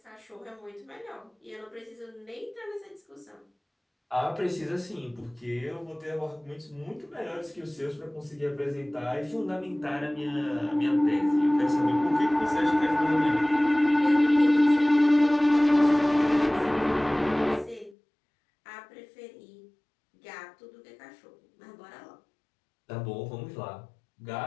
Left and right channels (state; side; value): drops out; right; at 17.9 s